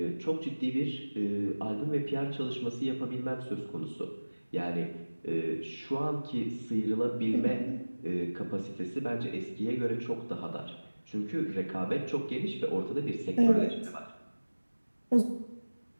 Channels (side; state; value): both; inverted; correlation -1.00